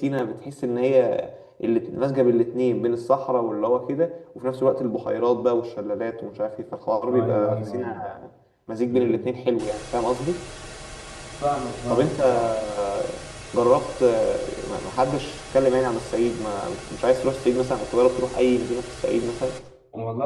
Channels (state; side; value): identical; both; correlation 1.00